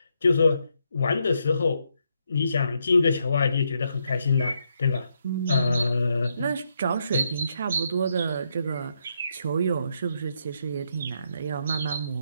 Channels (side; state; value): both; inverted; correlation -0.78